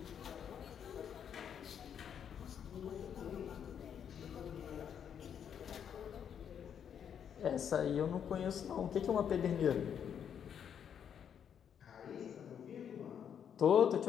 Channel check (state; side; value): quieter; right; 8.3 dB